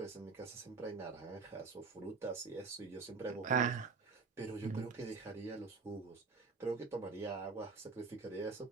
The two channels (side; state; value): left; quieter; 4.5 dB